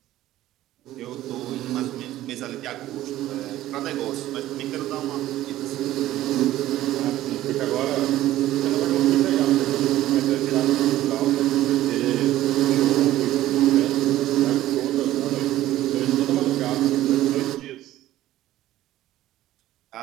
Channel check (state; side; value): quieter; left; 14.4 dB